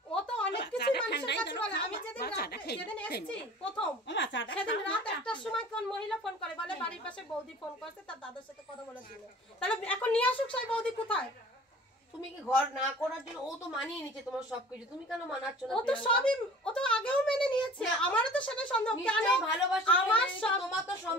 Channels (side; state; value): both; normal; correlation 0.45